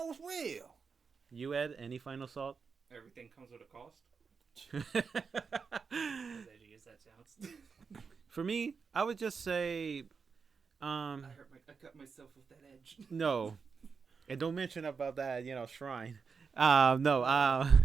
it's real. You, Ed, any final thought? Everything comes with a cost. I use that sounds. For me, I would just say, I cut myself with that edge. no, and don't mention about that, shrine. No, no.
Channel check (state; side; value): quieter; left; 5.5 dB